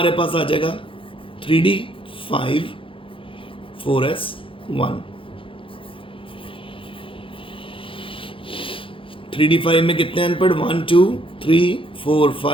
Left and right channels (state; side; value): late; right; 0.25 ms